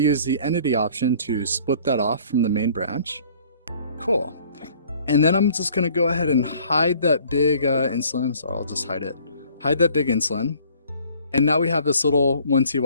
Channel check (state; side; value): inverted; both; correlation -0.55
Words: the entity option to split that off from the main branch. Cool. And then I'm just going to go ahead and hide that big insulin. So I'll just hide it. Hide that big insulin. And now we have this little